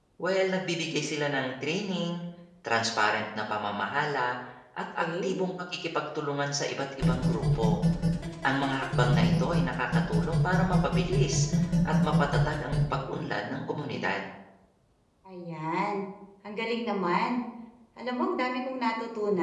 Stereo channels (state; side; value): identical; both; correlation 1.00